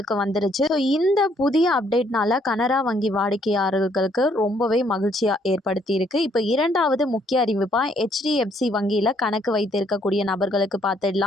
வந்துருச்சு. ஸோ இந்த புதிய அப்டேட்னால கனரா வங்கி வாடிக்கையாளர்களுக்கு ரொம்பவே மகிழ்ச்சியாக ஏற்படுத்தி இருக்கு. இப்போ இரண்டாவது முக்கிய அறிவிப்பா HDFC வங்கியில் கணக்கு வைத்திருக்கக்கூடிய நபர்களுக்கு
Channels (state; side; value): normal; both; correlation 0.68